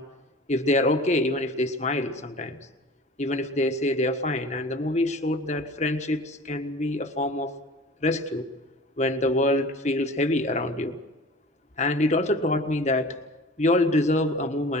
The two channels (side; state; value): both; normal; correlation 0.41